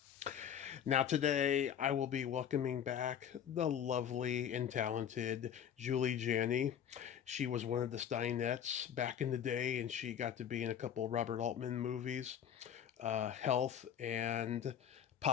Now today I will be welcoming back the lovely and talented Julie Janney. She was one of the Steinettes back in the day and she got to be in a couple of Robert Altman movies. Health and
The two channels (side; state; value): right; quieter; 9.1 dB